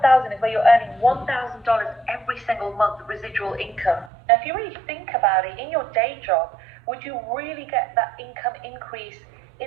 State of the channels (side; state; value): left; drops out; at 4.1 s